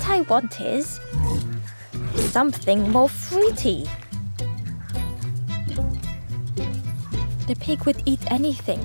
I want is something more fruity. The pig would eat anything.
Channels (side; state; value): both; inverted; correlation -1.00